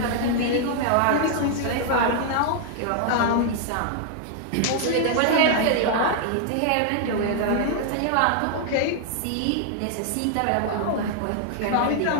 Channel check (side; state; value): both; different; correlation 0.00